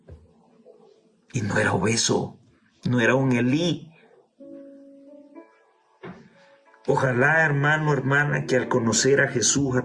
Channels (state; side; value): identical; both; correlation 1.00